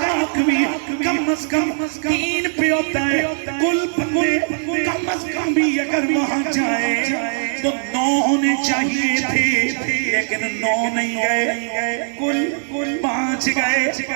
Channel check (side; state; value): left; silent; digital silence